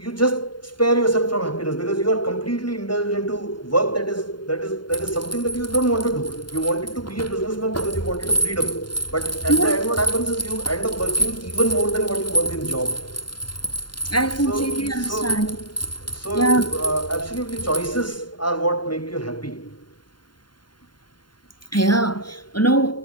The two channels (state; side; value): late; right; 0.72 ms